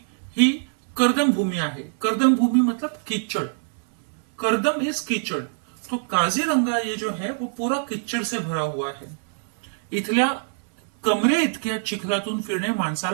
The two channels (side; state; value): left; silent; 60 dB below the other